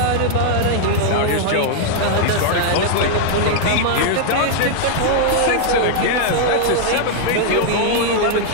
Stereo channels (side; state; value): both; different; correlation -0.01